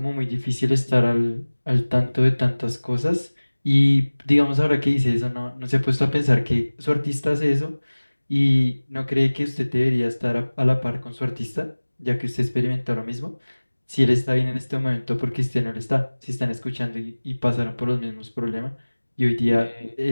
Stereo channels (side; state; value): both; inverted; correlation -1.00